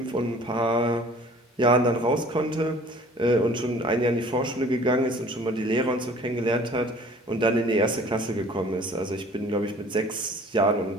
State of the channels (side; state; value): both; normal; correlation 0.50